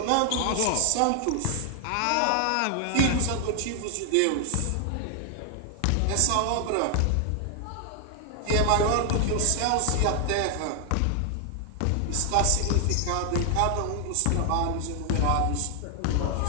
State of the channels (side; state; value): both; different; correlation 0.00